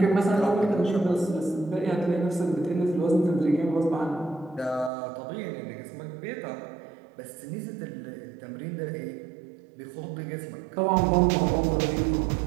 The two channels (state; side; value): drops out; left; at 4.9 s